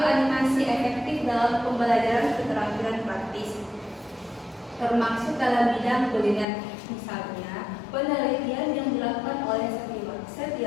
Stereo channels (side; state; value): right; drops out; at 6.5 s